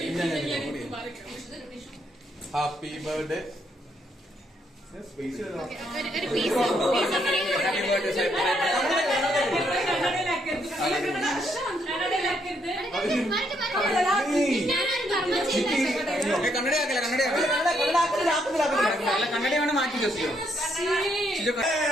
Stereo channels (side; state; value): both; normal; correlation 0.74